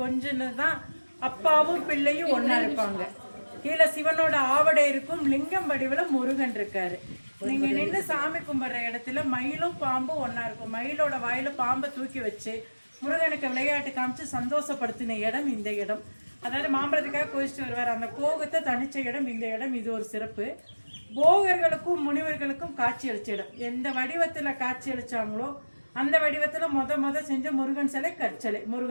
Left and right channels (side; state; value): both; inverted; correlation -1.00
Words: கொஞ்சதான் அப்பாவும் பிள்ளையும் ஒன்னா இருப்பாங்க. கீழே சிவனோட ஆவடை இருக்கும், லிங்கம் வடிவுல முருகன் இருக்காரு. நீங்க நின்று சாமி கும்பிடுற இடத்துல மயிலும் பாம்பும் ஒன்னா இருக்கும். மயிலோட வாயில பாம்பை தூக்கி வச்சு முருகனுக்கு விளையாட்டு காமிச்சு சந்தோஷப்படுத்தின இடம் இந்த இடம். அதாவது மாம்பழத்துக்காக கோயிச்சுட்டு வருவார். அந்த கோகத்தை தனிச்ச இடம் இந்த இடம். இது ஒரு சிறப்பு. போகர்களுக்கும் முனிவர்களுக்கும் காட்சி அளிச்ச இடம். எந்த வடிவத்துல காட்சி அளிச்சாங்களோ அந்த வடிவத்துல முத செஞ்ச முருகன் சிலை கற்சலை.